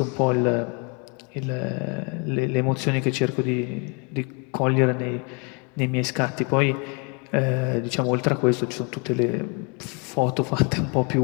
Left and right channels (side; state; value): right; quieter; 33.9 dB